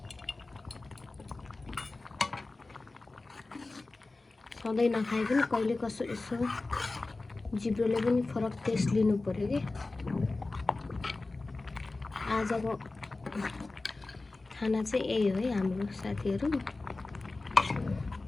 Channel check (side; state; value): right; quieter; 3.3 dB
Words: सधैँ नखाए पनि कहिले कसो यसो जिब्रोले पनि फरक टेस्ट लिनु पर्यो कि। आजको खाना चाहिँ यही हो है हाम्रो साथीहरू।